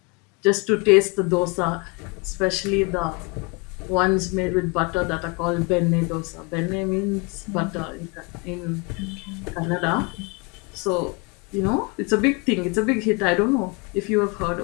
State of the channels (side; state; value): right; quieter; 29.8 dB